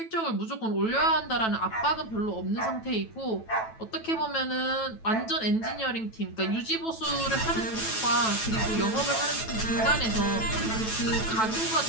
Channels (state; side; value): late; right; 9.1 ms